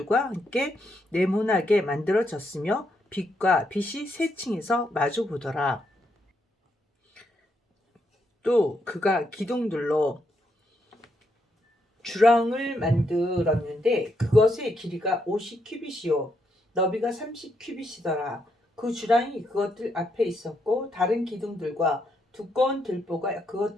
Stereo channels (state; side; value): normal; both; correlation 0.78